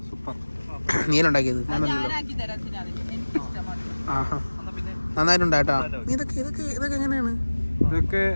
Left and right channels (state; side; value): inverted; both; correlation -1.00